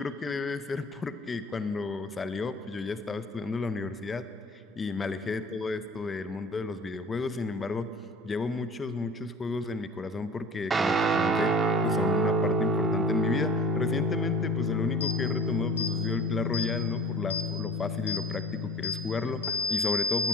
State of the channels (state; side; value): normal; both; correlation 0.42